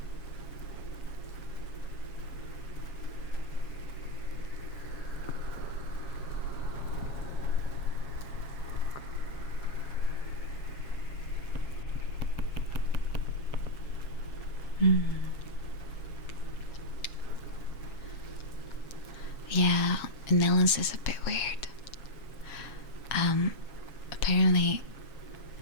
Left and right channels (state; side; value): late; right; 7.3 ms